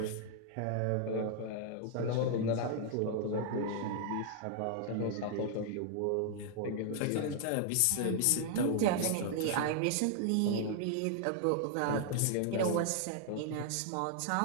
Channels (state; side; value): different; both; correlation 0.00